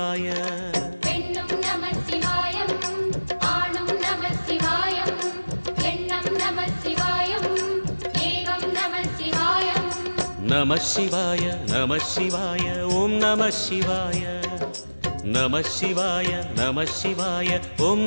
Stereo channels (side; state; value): both; inverted; correlation -1.00